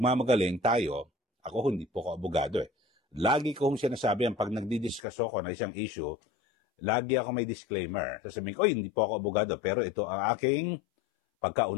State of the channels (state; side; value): drops out; right; at 5.0 s